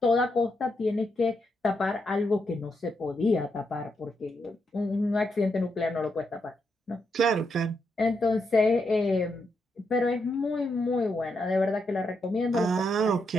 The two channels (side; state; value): both; normal; correlation 0.81